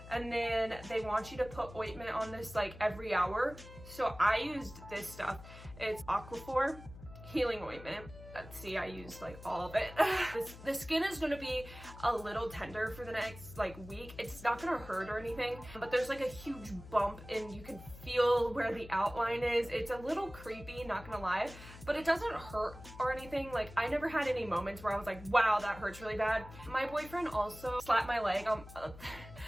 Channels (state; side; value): noise; left; hum, 16 dB below the sound